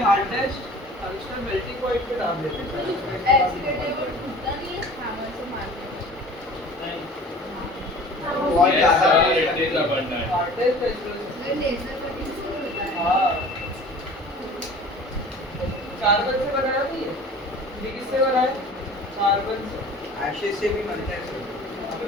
हार्डेस्ट टंगस्टन मेल्टिंग पॉइंट पे डाल देते हैं। एक्सीडेंटल टूटता नहीं है हैमर से मारने हाँ, it is abundant hardest natural ये लेजर कटिंग से होता है। हाँ कार्बन से बनाया नहीं है, ये किससे बना है? कार्बन से। एशेज से भी बनता है सर। अबे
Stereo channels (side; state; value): both; normal; correlation 0.44